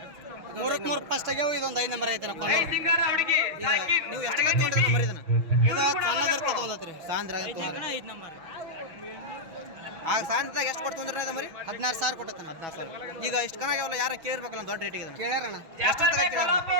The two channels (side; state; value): left; late; 6.1 ms